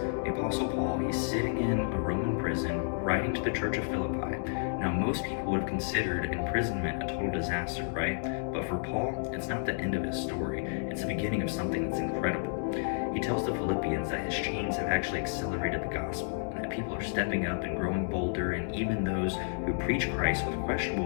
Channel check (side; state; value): right; silent; digital silence